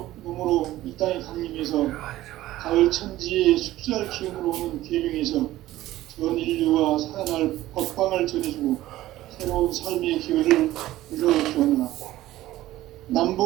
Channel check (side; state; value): left; quieter; 15.4 dB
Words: 몸으로 이 땅에 강림해서 가을 천지에 숲살 기운으로 오는 계명에서 전 인류가 살아날 법방을 전해주고 새로운 삶의 기회를 이뤄주었노라.